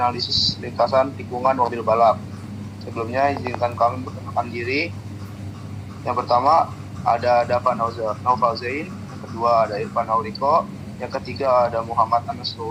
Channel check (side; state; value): both; identical; correlation 1.00